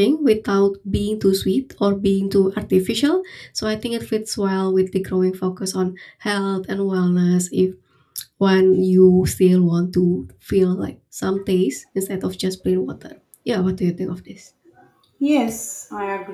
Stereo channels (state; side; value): identical; both; correlation 1.00